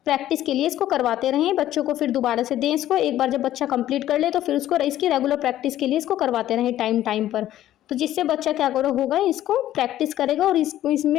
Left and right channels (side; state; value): right; quieter; 13.0 dB